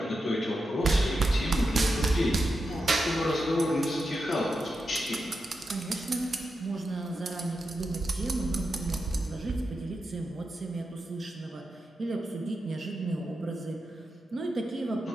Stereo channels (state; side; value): normal; both; correlation 0.88